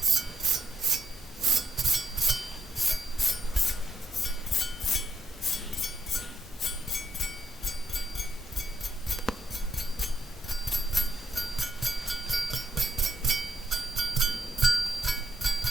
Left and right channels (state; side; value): normal; both; correlation 0.74